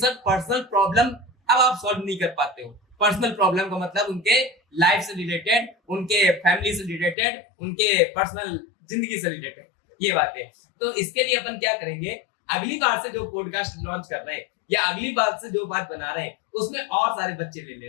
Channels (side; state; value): right; drops out; at 7.2 s